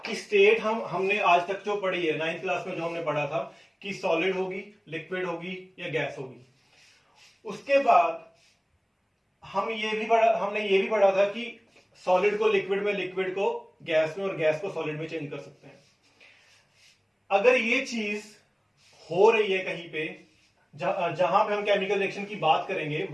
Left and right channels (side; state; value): both; identical; correlation 1.00